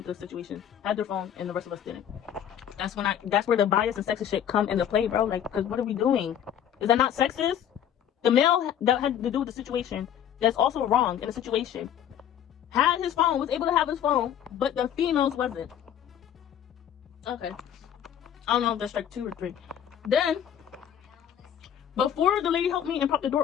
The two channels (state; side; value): quieter; right; 9.7 dB